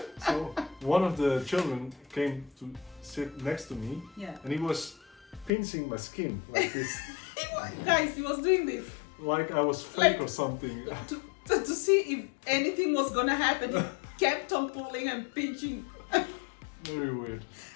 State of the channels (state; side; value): drops out; right; at 5.5 s